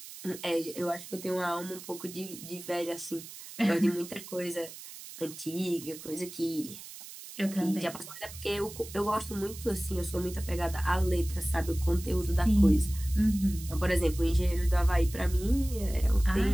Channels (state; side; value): noise; right; hiss, 14 dB below the sound